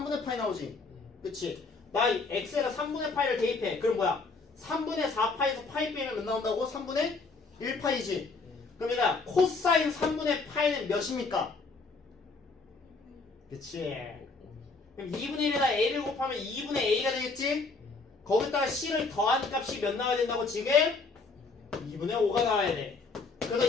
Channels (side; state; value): right; quieter; 4.1 dB